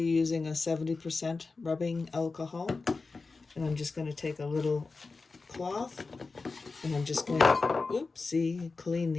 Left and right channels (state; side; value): quieter; right; 4.0 dB